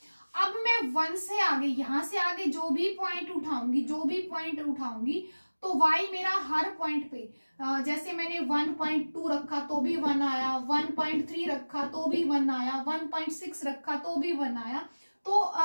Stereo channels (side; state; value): both; inverted; correlation -1.00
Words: अब मैं 1 से आगे, यहां से आगे जो भी पॉइंट उठाऊंगी तो y मेरा हर पॉइंट पे, जैसे मैंने 1.2 रखा तो भी 1 आया, 1.3 रखा तो भी 1 आया, 1.6 रखा तो भी 1 आया। तो